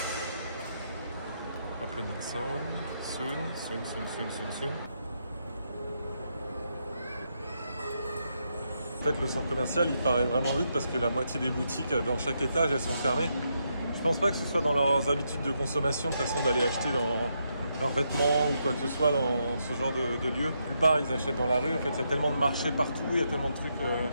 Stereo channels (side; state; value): both; inverted; correlation -0.80